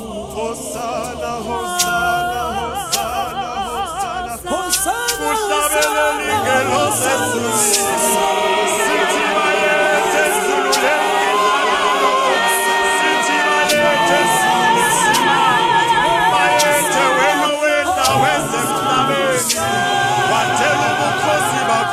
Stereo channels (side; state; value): both; identical; correlation 1.00